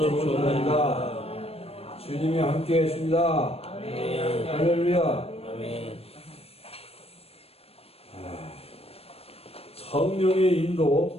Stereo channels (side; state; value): right; late; 0.29 ms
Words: 부릅니다. 주님이 함께 계십니다. 할렐루야. 성령의